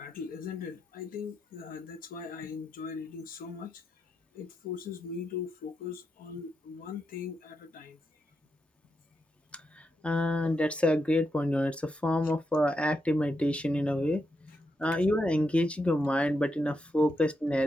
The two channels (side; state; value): both; normal; correlation 0.84